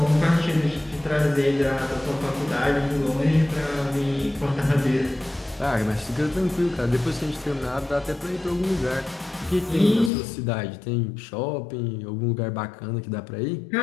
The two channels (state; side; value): drops out; right; at 10.1 s